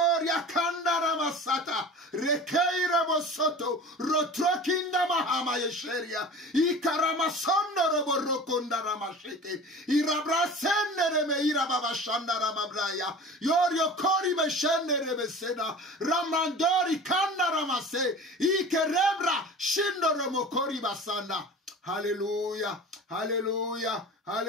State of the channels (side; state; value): both; normal; correlation 0.38